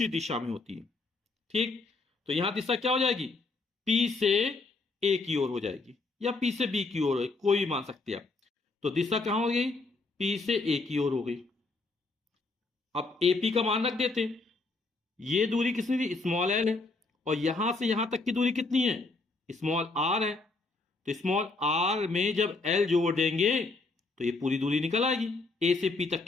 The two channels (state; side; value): quieter; right; 3.6 dB